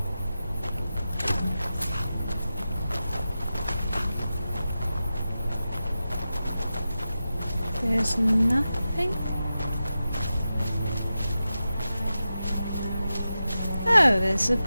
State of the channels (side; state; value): both; inverted; correlation -0.92